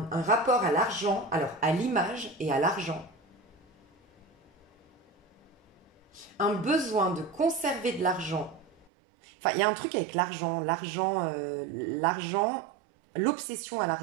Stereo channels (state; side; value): drops out; left; at 8.9 s